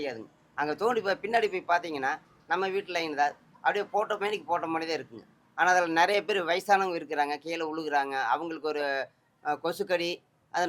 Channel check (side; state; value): both; identical; correlation 1.00